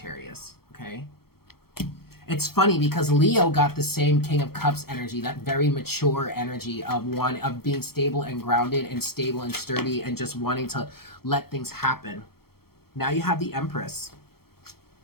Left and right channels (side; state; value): right; late; 0.95 ms